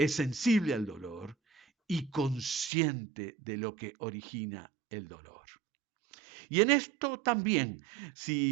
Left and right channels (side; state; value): left; drops out; at 2.7 s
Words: sensible al dolor y consciente de lo que origina el dolor. Y en esto también,